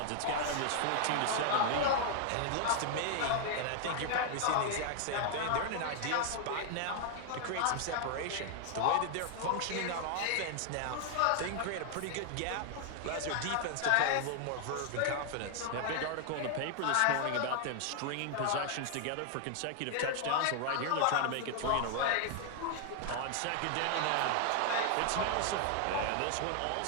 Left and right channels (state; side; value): different; both; correlation 0.00